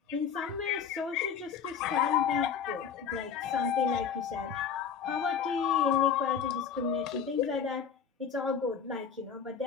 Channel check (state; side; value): quieter; right; 7.1 dB